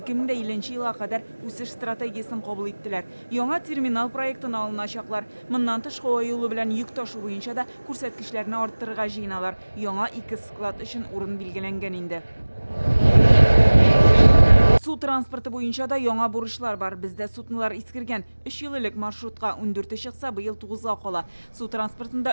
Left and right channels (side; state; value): both; inverted; correlation -1.00